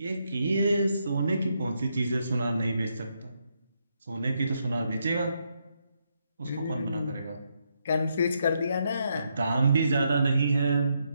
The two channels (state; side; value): inverted; both; correlation -0.79